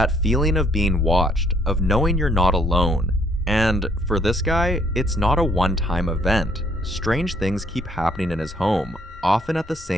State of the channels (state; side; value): normal; both; correlation 0.66